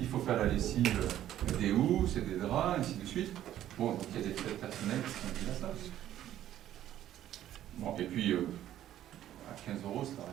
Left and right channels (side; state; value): left; quieter; 12.1 dB